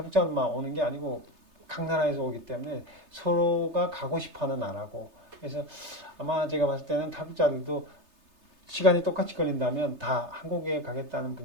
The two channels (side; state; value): left; late; 3.3 ms